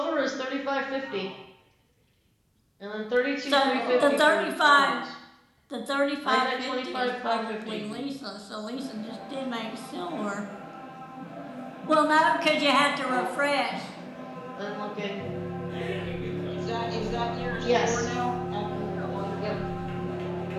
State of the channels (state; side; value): identical; both; correlation 1.00